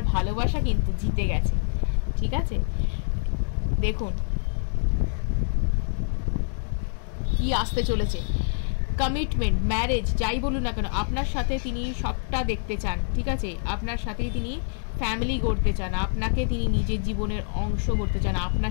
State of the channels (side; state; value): right; silent; digital silence